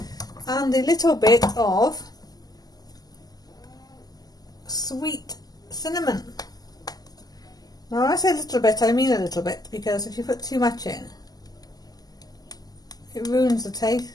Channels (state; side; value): late; right; 0.18 ms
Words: are. And a little bit of sweet cinnamon. Now when I say a little bit, I mean a little bit, because if you put too much in, it ruins the